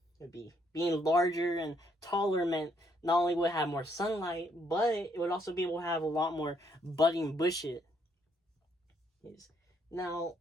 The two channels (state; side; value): normal; both; correlation 0.71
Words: would be being larger and taller meant not only would it have more sunlight, but it would also be able to have a lot more budding bushes. Now,